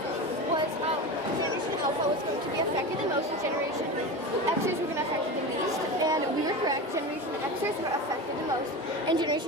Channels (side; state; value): both; normal; correlation 0.26